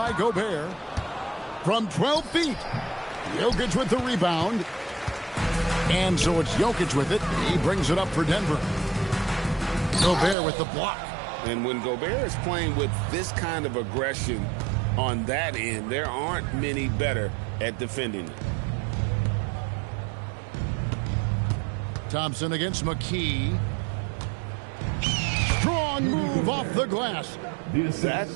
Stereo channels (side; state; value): left; drops out; at 10.4 s